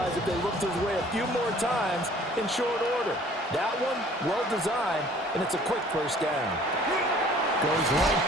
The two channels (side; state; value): both; normal; correlation 0.53